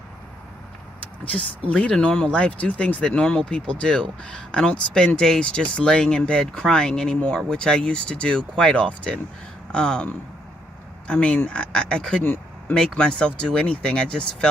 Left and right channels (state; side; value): normal; both; correlation 0.74